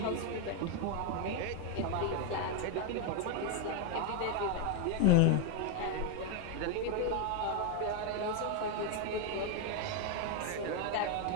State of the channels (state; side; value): different; both; correlation 0.01